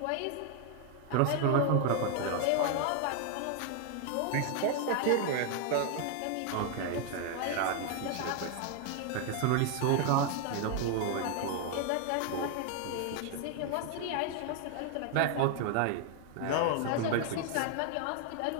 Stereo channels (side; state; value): both; different; correlation 0.00